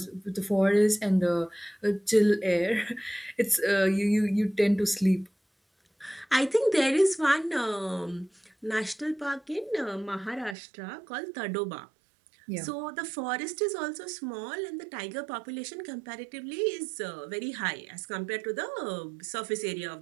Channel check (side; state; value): left; drops out; at 10.6 s